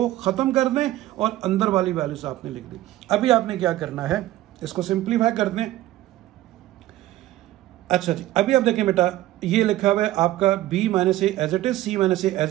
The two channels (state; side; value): quieter; left; 15.4 dB